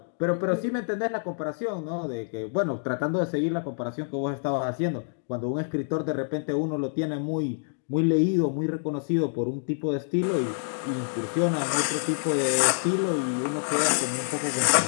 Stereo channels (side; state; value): right; silent; digital silence